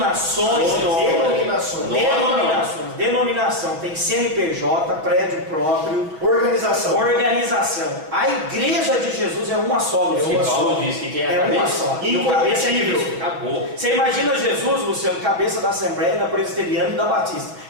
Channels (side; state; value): left; late; 6.3 ms